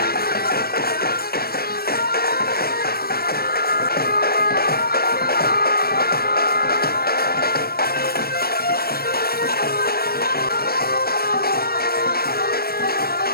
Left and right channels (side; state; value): right; late; 0.44 ms